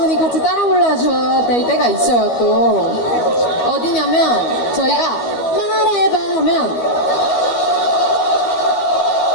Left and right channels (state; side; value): late; right; 12 ms